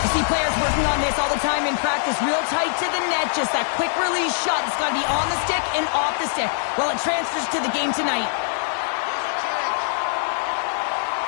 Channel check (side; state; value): right; silent; digital silence